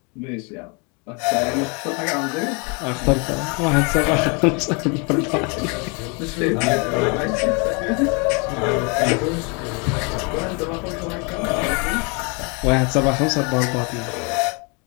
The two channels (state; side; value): quieter; right; 32.7 dB